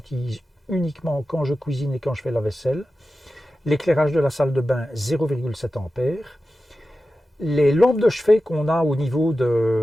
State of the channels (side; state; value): both; normal; correlation 0.93